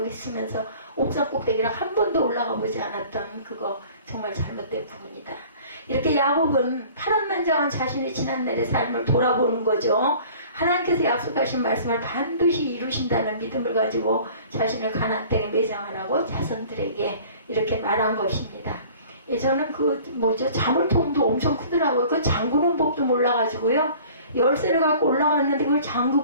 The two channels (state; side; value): inverted; both; correlation -0.48